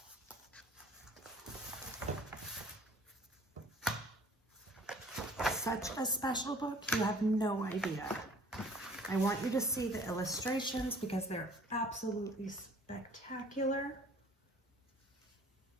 Such a special book, you have no idea. I want you to see the illustrations because they're absolutely spectacular.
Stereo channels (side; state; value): both; normal; correlation 0.52